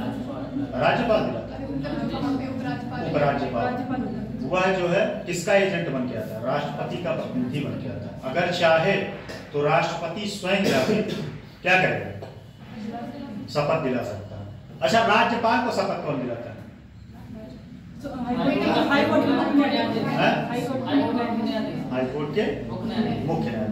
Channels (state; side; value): identical; both; correlation 1.00